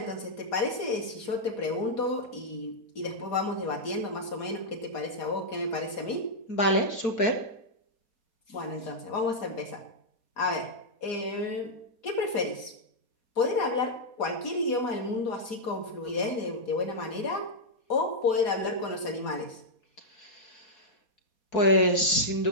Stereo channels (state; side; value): late; right; 4.2 ms